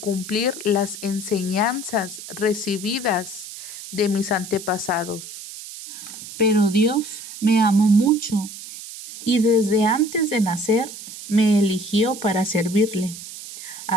las enseñanzas recibidas de mis antepasados. Pero Dios me amó mucho y desde antes de nacer me eligió para servirle.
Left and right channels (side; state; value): right; noise; hiss, 12 dB below the sound